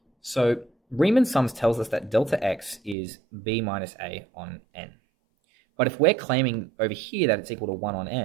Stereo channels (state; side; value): drops out; left; at 3.0 s